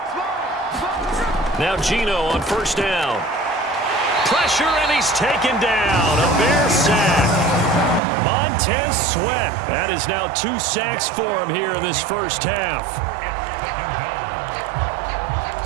Now Gino on first down. Pressure, and he's taken down. A Bear sack. Montez Sweat. That is now 2 sacks for him here in this first half.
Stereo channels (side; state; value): left; drops out; at 8.0 s